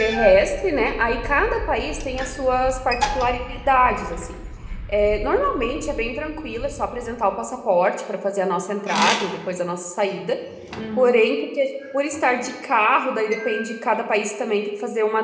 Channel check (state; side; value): identical; both; correlation 1.00